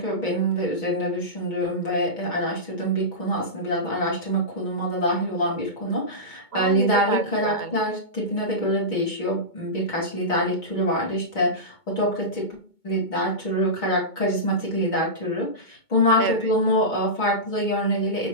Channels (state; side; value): late; right; 2.2 ms